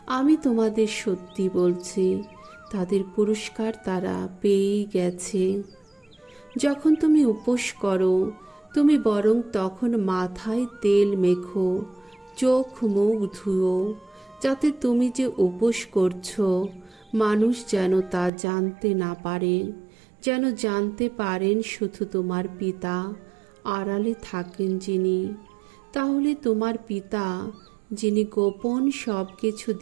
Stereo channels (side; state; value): left; drops out; at 18.3 s